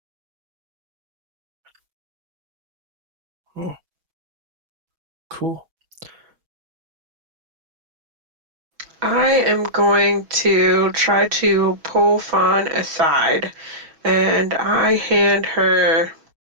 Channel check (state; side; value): late; left; 6.2 ms